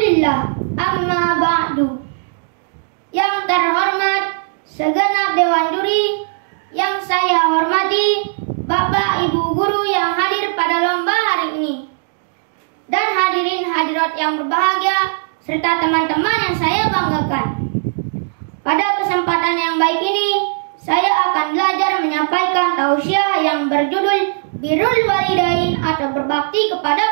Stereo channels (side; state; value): left; silent; digital silence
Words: Alhamdulillah, amma ba'du. Yang terhormat segenap Dewan Juri, yang saya hormati Bapak Ibu Guru yang hadir pada lomba hari ini, dan hadirin hadirat yang berbahagia, serta teman-teman yang saya banggakan. Pada kesempatan yang baik ini, saya akan belajar menyampaikan tausiah yang berjudul Birrul Walidain atau berbakti